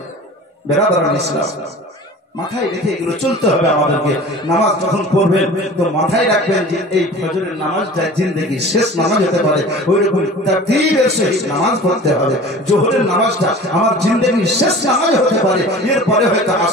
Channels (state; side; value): normal; both; correlation 0.40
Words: বেরাদার ইসলাম, মাথায় রেখে এগুলো চলতে হবে আমাদেরকে। নামাজ যখন পড়বেন তো মাথায় রাখবেন যে এই ফজরের নামাজটা জিন্দেগির শেষ নামাজ হতে পারে, ওই রকম তাকবীরের সহিত নামাজ পড়তে হবে। জোহরের নামাজটা আমার জিন্দেগির শেষ নামাজ হতে পারে, এরপরে হয়তো